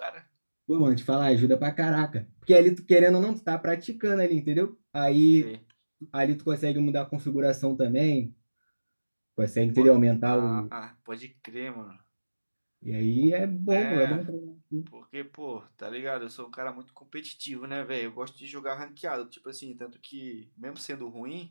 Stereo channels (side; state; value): both; inverted; correlation -1.00